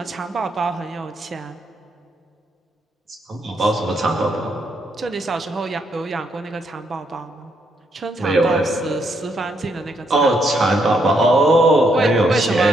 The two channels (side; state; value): both; normal; correlation 0.75